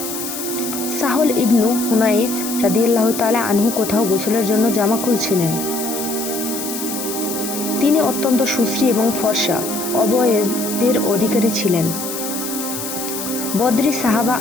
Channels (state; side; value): noise; left; hiss, 7 dB below the sound